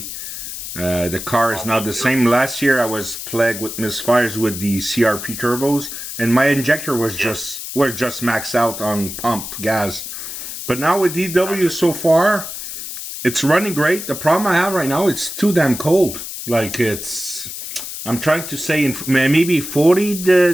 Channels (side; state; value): left; noise; hiss, 8 dB below the sound